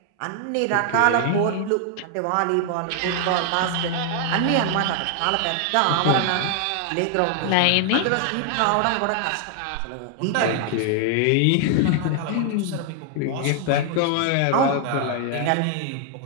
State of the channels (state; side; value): different; both; correlation 0.00